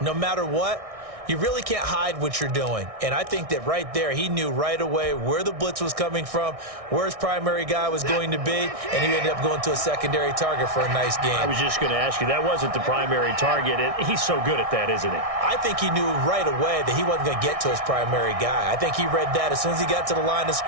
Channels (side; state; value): left; late; 1.6 ms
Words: matter what, You really can't hide what you're doing. And I think that right there, he knew right away where the blitz was coming from, where his primary guy was going to be, and he ended up going to a secondary target for a nice game. I was just going to ask you, that wasn't the primary target. He's so good at that, isn't he? I think he knew right away that he wasn't going to get to his primary guy. I think he read that as soon as he got to the line of